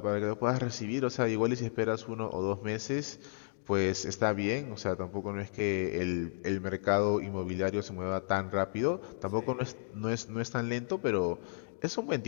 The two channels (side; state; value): right; silent; digital silence